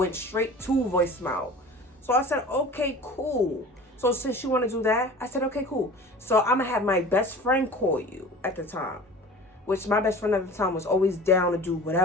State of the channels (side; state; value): both; normal; correlation 0.40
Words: straight to voicemail. So I said, okay, cool. So since you want to do that, I said, okay, cool. So I'm going to have my best friend call you at the time. Which my best friend at the time was always down to do